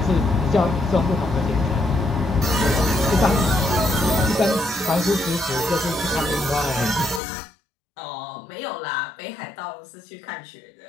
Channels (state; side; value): drops out; right; at 7.2 s